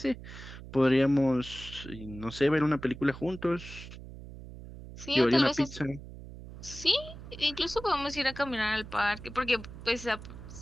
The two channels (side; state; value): right; noise; hum, 14 dB below the sound